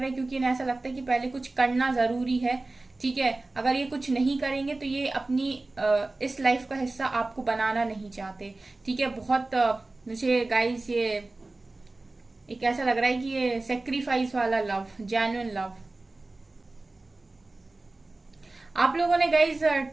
क्योंकि इन्हें ऐसा लगता है कि पहले कुछ करना जरूरी है। ठीक है, अगर ये कुछ नहीं करेंगे तो ये अपनी इस लाइफ का हिस्सा आपको बनाना नहीं चाहते। ठीक है, बहुत मुझे गाइस ये एक ऐसा लग रहा है कि ये सेक्रीफाइस वाला लव, जेन्युइन लव। आप लोगों ने गाइस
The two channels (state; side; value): quieter; left; 3.1 dB